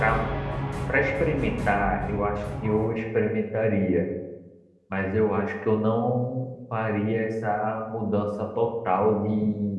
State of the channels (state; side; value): identical; both; correlation 1.00